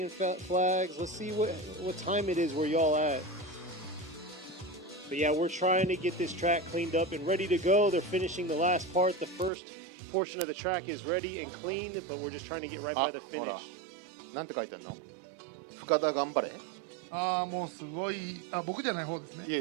flags. Let's see what time it is where y'all at. But yeah, we're trying to get this track cleaned up and ready to go. They're finishing the last part. The first portion of the track is ready and clean, but we're just trying to get right by the ほら finish. なんて書いてんの？深田頑張れ。ああ、もうすごい。あ、僕じゃない方ですね。いえ、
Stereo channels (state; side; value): drops out; left; at 9.5 s